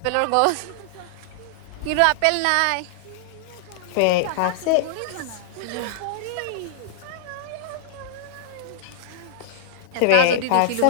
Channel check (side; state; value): both; different; correlation -0.01